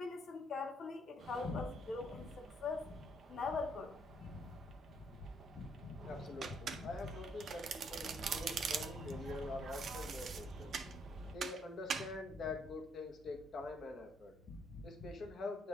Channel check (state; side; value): normal; both; correlation 0.70